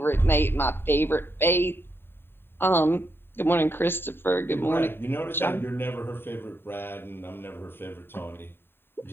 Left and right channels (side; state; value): right; late; 0.11 ms